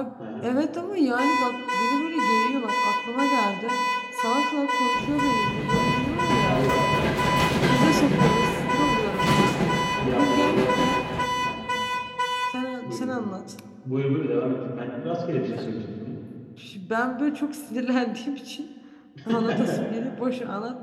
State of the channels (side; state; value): both; identical; correlation 1.00